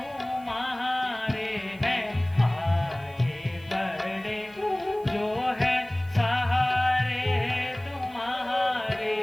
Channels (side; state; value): right; noise; hiss, 27 dB below the sound